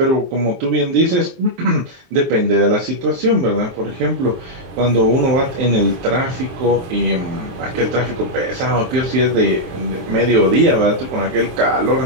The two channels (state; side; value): late; left; 23 ms